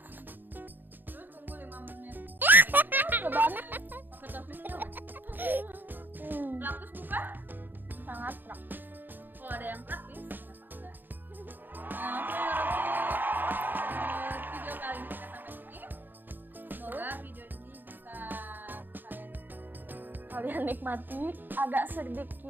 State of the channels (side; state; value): left; late; 0.091 ms